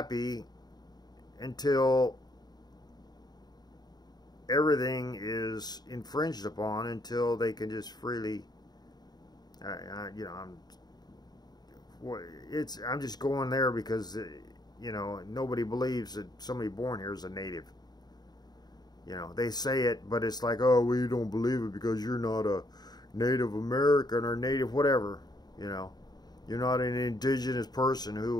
until everything is infringed upon, until they can just freely, you know, I'm just going there because, you know, nobody believes that somebody born here is a native. You know, they say it, but it's like, oh, well, you don't believe it because you're not a Native American or Native whatever, you know. You're not an indigenous person who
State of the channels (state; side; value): late; right; 0.20 ms